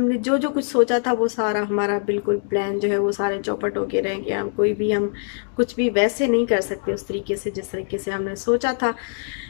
जो जो कुछ सोचा था वो सारा हमारा बिल्कुल प्लान जो है वो सारे चौपट होके रह गए। हम कुछ भी वैसे नहीं कर सकते उस तरीके से जिस तरीके से हमने सोचा था।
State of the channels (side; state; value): right; silent; digital silence